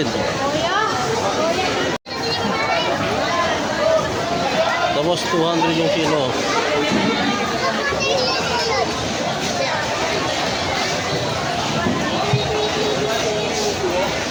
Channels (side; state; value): both; identical; correlation 1.00